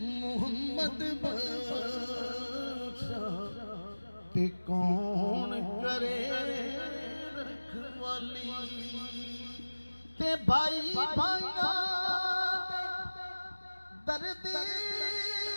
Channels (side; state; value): both; inverted; correlation -1.00